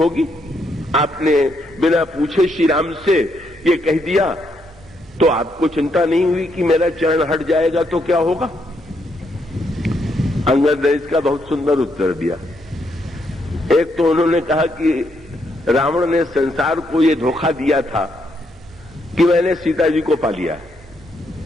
आपने बिना पूछे श्री राम से ये कह दिया तो आपको चिंता नहीं हुई कि मेरा चरण हट जाएगा तो क्या होगा? अंगद ने इसका बहुत सुंदर उत्तर दिया। एक तो उन्होंने कहा कि रावण ने संसार को ये धोखा दिया था कि मैंने सीता जी को पा लिया,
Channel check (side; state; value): both; normal; correlation 0.76